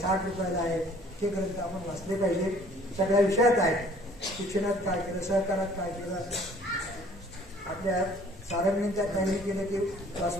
रुपयाला आहे, हे ग्रंथ आपण वाचले पाहिजे. सगळ्या विषयात आहे. शिक्षणात काय केलं, सहकारात काय केलं, आपल्या सारंगींच्या काही केलं की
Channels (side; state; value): both; normal; correlation 0.55